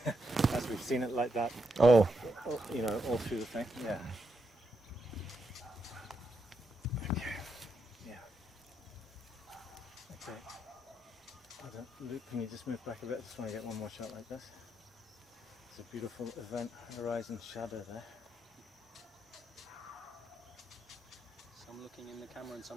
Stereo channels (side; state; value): both; normal; correlation 0.81